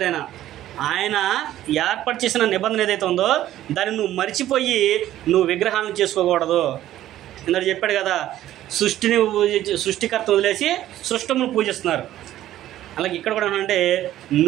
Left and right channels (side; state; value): left; quieter; 13.3 dB